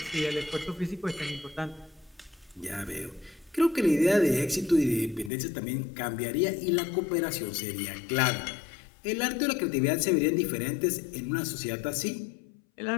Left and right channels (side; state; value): right; drops out; at 5.3 s